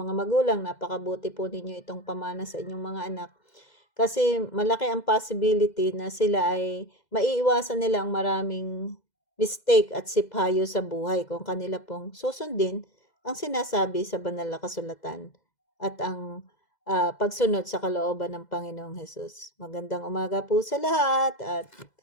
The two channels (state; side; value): late; right; 2.0 ms